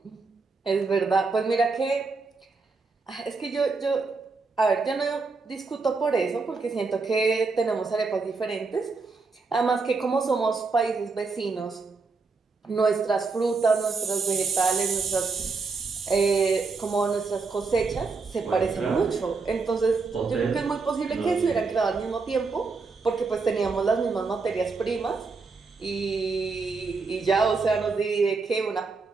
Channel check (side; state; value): left; quieter; 4.3 dB